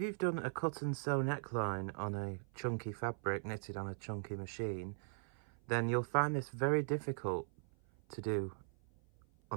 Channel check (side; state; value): left; silent; 51 dB below the other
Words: you've done a cut and sew neckline on a chunky fabric knitted on a chunky machine, then you'll find this very difficult to do